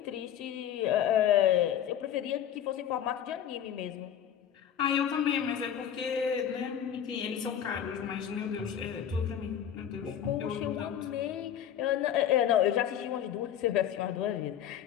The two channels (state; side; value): quieter; right; 9.7 dB